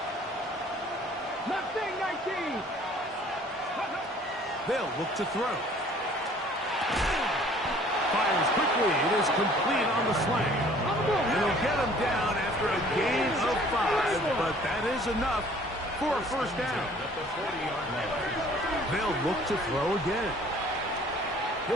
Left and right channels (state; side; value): normal; both; correlation 0.54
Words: Nothing 19. They'll look to throw. Fires quickly. It is complete on the slant. It'll get him down after a gain of 5, but that is enough for a first down. They'll look to throw again.